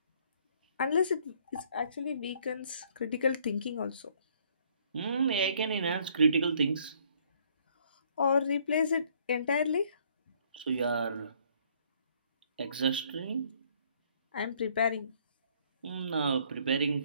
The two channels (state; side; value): inverted; both; correlation -0.63